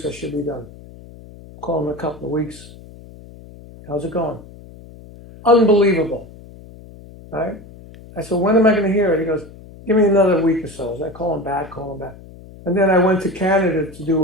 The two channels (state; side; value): noise; left; hum, 19 dB below the sound